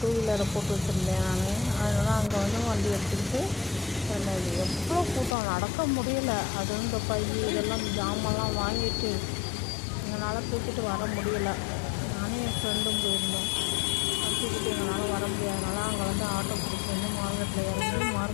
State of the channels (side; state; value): right; drops out; at 5.4 s